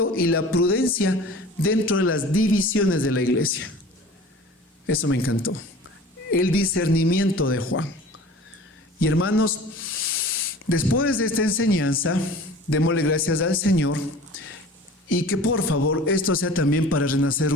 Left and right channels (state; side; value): normal; both; correlation 0.42